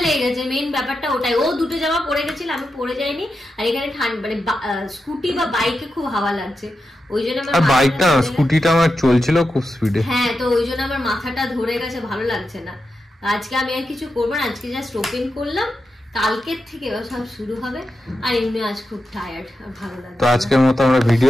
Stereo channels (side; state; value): both; normal; correlation 0.89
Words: লেগে গেছে, মেইন ব্যাপারটা ওটাই। ও দুটো জামা পরে গেছিল, আমি পরে যাইনি। আর এখানে ঠান্ডা মানে স্কুটি বা বাইকে খুব হাওয়া লাগছে, ওই জন্য আমার বাইকটা স্কুটিটা আমার চলছিল খুব স্পিডে। হ্যাঁ, তো ওই জন্য আমার মাথাটা ধরে গেছে, ভালো লাগছে না। আজকে আমি আর কিছু করবো না, আজকে জাস্ট ওপেন করলাম, কালকের থেকে সব শুরু হবে। আর এমনি আজ খুব টায়ার্ড, আর ভালো লাগছে। তো আজকের মতো আমরা